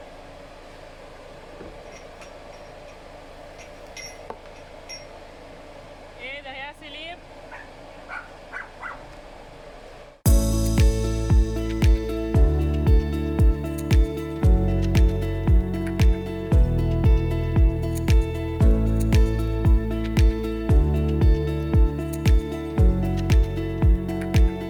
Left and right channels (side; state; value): both; identical; correlation 1.00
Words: Et derrière, c'est libre.